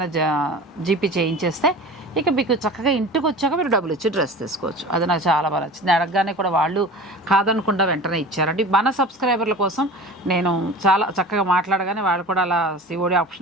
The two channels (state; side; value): normal; both; correlation 0.36